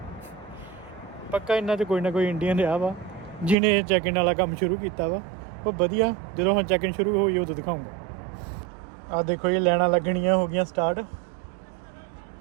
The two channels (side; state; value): left; drops out; at 3.6 s